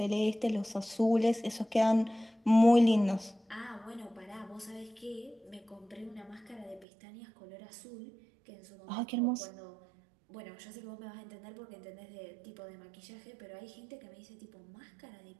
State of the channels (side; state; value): left; drops out; at 6.9 s